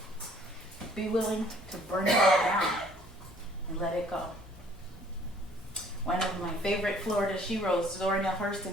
Be willing to burn it all down and let it go. One of my favorite Florida sheroes, Zora Neale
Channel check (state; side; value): normal; both; correlation 0.57